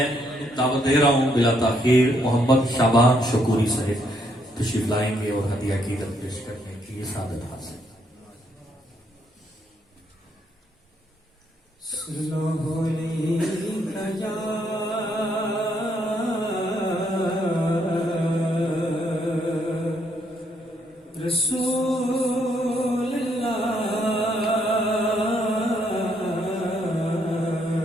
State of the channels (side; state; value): both; normal; correlation 0.73